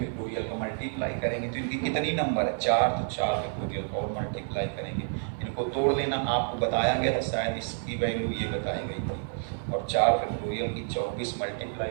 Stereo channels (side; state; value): left; silent; 59 dB below the other